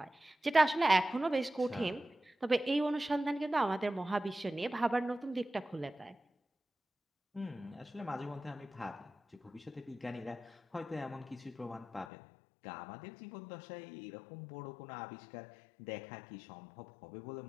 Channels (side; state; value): right; drops out; at 12.1 s